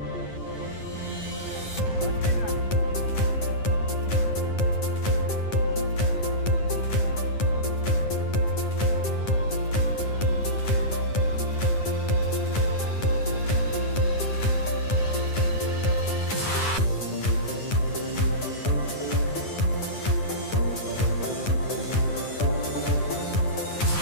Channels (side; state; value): right; late; 9.7 ms